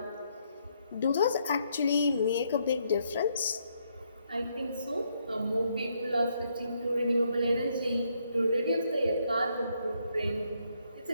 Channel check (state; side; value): inverted; both; correlation -0.74